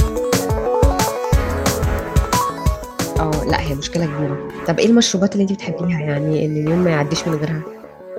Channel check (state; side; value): identical; both; correlation 1.00